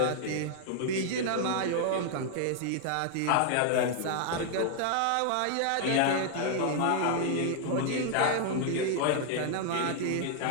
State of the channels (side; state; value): both; different; correlation 0.00